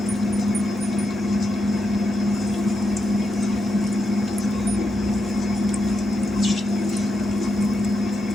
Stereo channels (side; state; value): both; normal; correlation 0.85